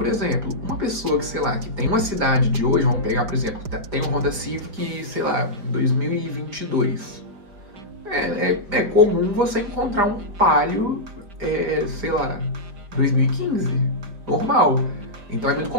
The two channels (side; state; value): left; late; 5.0 ms